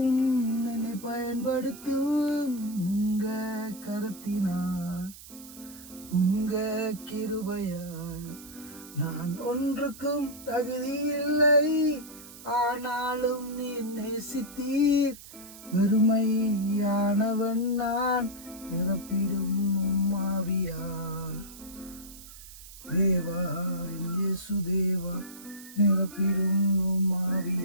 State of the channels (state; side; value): noise; right; hiss, 17 dB below the sound